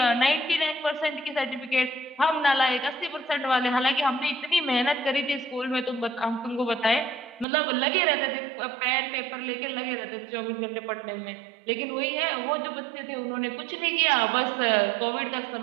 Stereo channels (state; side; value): drops out; left; at 7.5 s